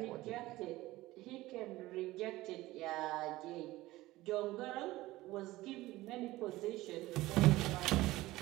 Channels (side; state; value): left; quieter; 17.9 dB